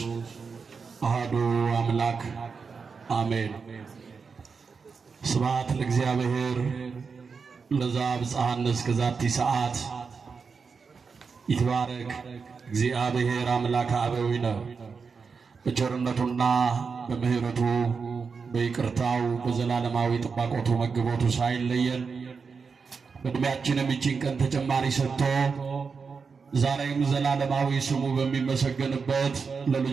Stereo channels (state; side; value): quieter; left; 5.3 dB